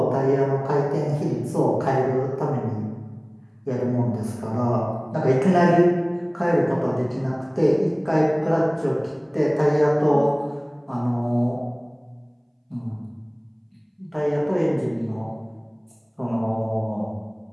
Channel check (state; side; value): identical; both; correlation 1.00